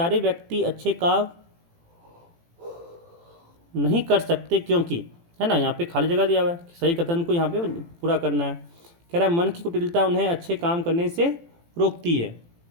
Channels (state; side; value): late; left; 18 ms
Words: व्यक्ति अच्छे काम नहीं कर सकते क्योंकि, है ना, यहाँ पे खाली जगह दिया हुआ है, सही कथन को यहाँ पे पूरा करना है। कह रहा है मन की कुटिलता उन्हें अच्छे काम करने से रोकती है,